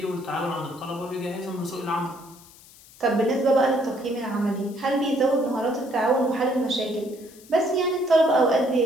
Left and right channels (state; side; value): noise; left; hiss, 23 dB below the sound